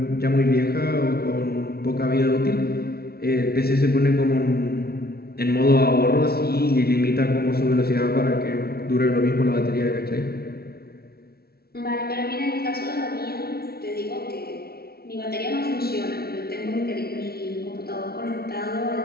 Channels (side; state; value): right; late; 0.45 ms